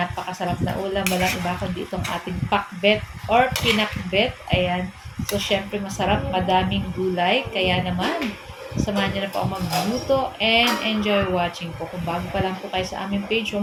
na ulam. Walang iba kundi itong ating pakbet or pinakbet. Ayan. So, syempre masarap, madaming gulay. Kaya naman, samahan niyo na po ako magluto and enjoy watching po. Kung bago pa lang po kayo sa aming page,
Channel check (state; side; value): identical; both; correlation 1.00